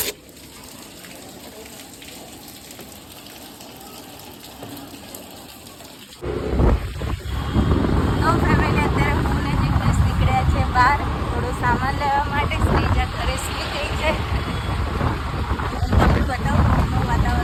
બહાર થોડો સામાન લેવા માટે. શ્રીજા ઘરે સૂઈ ગઈ છે. તમને બતાવું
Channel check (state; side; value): identical; both; correlation 1.00